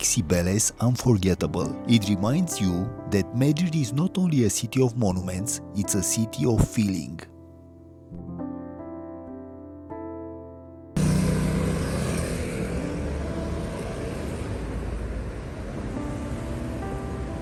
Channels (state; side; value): identical; both; correlation 1.00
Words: Cibeles unforgettable. It reminds you that Madrid is not only a city of monuments, it's a city of feeling.